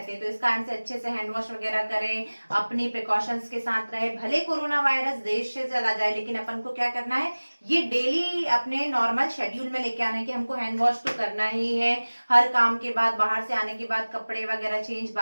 हैं। तो इस कारण से अच्छे से हैंड वॉश वगैरह करें, अपनी प्रिकॉशंस के साथ रहे। भले कोरोना वायरस देश से चला जाए, लेकिन अपन को क्या करना है, ये डेली अपने नॉर्मल शेड्यूल में लेके आना है कि हमको हैंड वॉश तो करना ही है, हर काम के बाद, बाहर से आने के बाद कपड़े वगैरह चेंज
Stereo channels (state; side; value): inverted; both; correlation -1.00